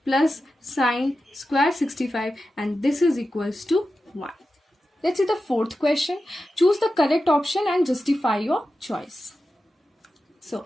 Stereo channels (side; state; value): both; normal; correlation 0.92